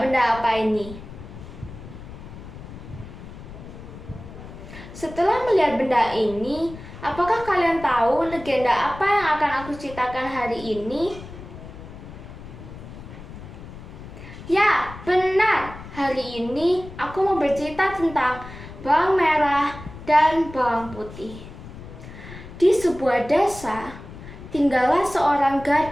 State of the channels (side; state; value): left; noise; rumble, 14 dB below the sound